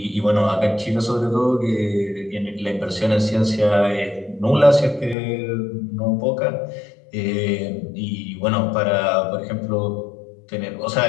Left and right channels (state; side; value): drops out; right; at 5.2 s